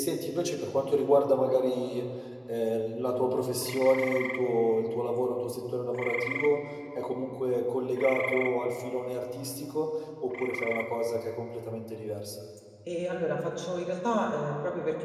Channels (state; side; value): identical; both; correlation 1.00